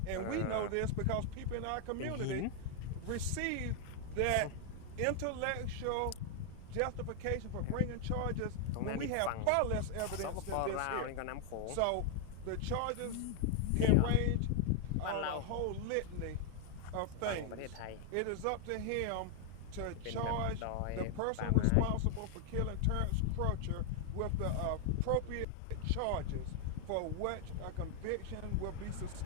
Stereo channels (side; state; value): both; different; correlation 0.00